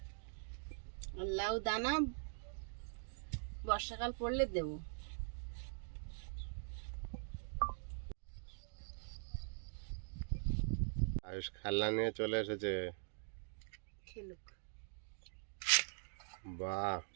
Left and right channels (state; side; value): silent; left; digital silence